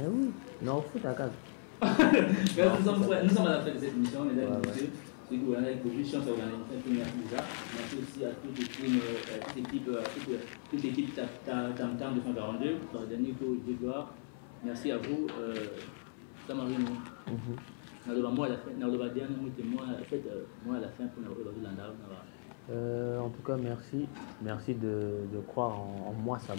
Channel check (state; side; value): silent; right; 54 dB below the other